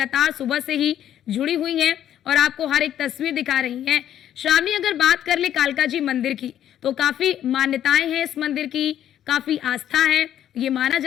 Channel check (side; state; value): right; quieter; 10.9 dB